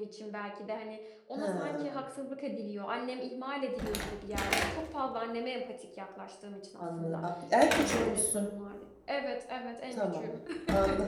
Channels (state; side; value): identical; both; correlation 1.00